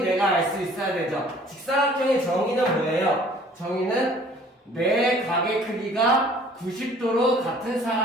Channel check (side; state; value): both; normal; correlation 0.53